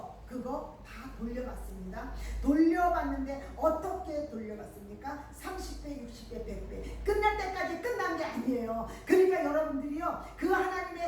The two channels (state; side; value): identical; both; correlation 1.00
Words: 그거 다 돌려받습니다. 돌려받는데 어떻게 돌려받습니까? 30배, 60배, 100배 끝날 때까지 끝난 게 아니에요. 그러니까 여러분들이요 그